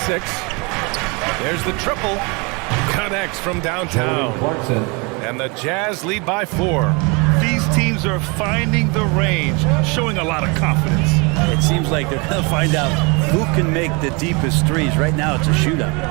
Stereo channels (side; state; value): left; quieter; 29.6 dB